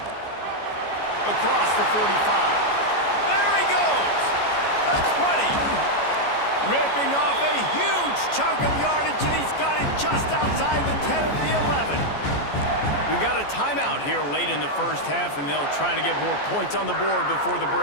Across the 45. There he goes! The 20. Ripping off a huge chunk of yardage, and he's got it just outside the 10 of the 11. We've got a timeout here late in the first half, and they'll try to get more points on the board before the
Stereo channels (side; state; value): right; late; 14 ms